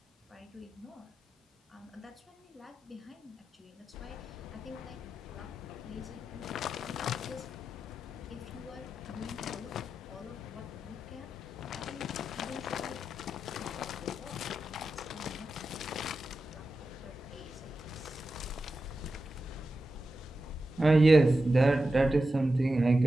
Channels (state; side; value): normal; both; correlation 0.91